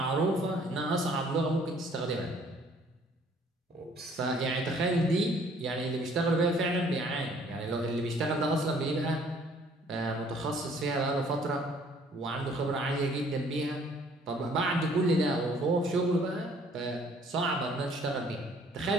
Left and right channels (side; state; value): both; normal; correlation 0.59